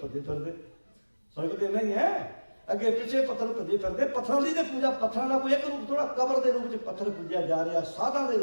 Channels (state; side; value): inverted; both; correlation -1.00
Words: भजे फिरते। फर्क तो नहीं है, अगे पिछे पत्थर भजे फिरते। पत्थरों की पूजा, पत्थरों का कोई एक रूप थोड़ा, कबर के रूप में पत्थर पूजा जा रहा, साधा के